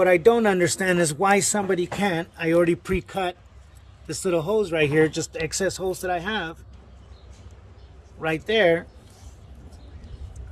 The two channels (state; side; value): identical; both; correlation 1.00